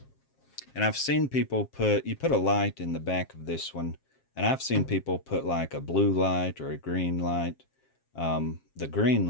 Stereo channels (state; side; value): late; right; 7.4 ms